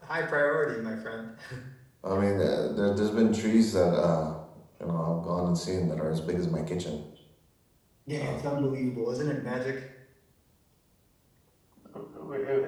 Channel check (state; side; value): identical; both; correlation 1.00